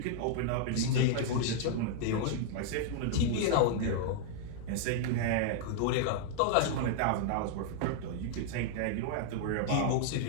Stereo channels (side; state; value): both; different; correlation -0.01